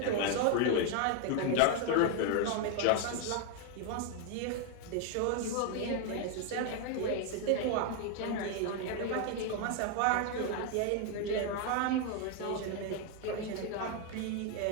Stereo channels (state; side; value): different; both; correlation 0.00